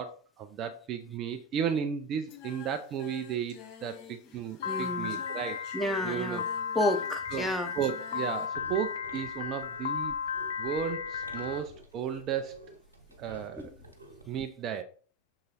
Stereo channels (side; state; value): both; normal; correlation 0.13